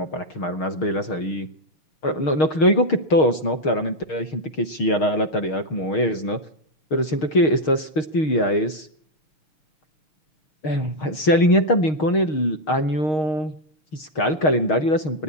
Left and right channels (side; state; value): right; late; 6.5 ms